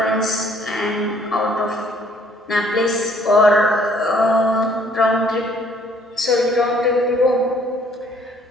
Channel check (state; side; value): normal; both; correlation 0.61